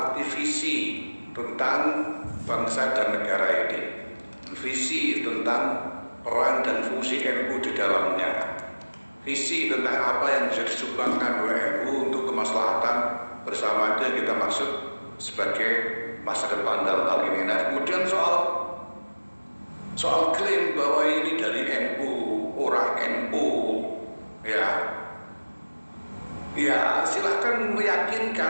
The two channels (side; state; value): both; inverted; correlation -1.00